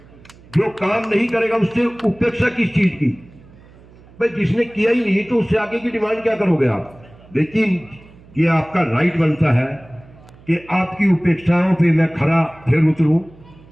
जो काम नहीं करेगा उससे उपेक्षा किस चीज की? भाई जिसने किया ही नहीं तो उससे आगे की डिमांड क्या करोगे आप? लेकिन ये आपका राइट बनता है कि आपकी उपेक्षाओं पे मैं खरा फिर उतरूं।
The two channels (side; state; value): right; noise; hum, 24 dB below the sound